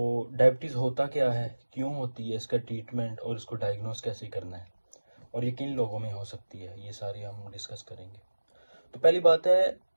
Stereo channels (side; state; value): both; inverted; correlation -1.00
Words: डायबिटीज़ होता क्या है, क्यों होती है, इसका ट्रीटमेंट और इसको डायग्नोस कैसे करना है और ये किन लोगों में हो सकती है, ये सारे हम डिस्कस करेंगे। तो पहली बात है,